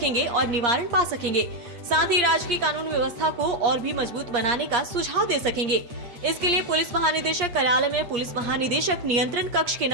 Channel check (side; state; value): left; late; 8.5 ms